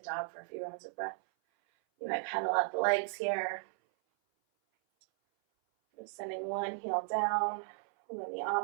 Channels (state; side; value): silent; left; 54 dB below the other